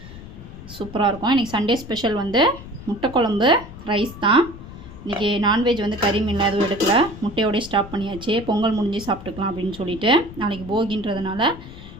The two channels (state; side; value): noise; left; rumble, 15 dB below the sound